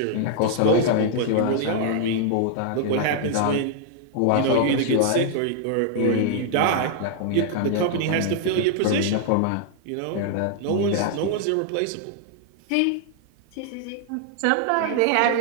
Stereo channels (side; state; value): both; different; correlation 0.00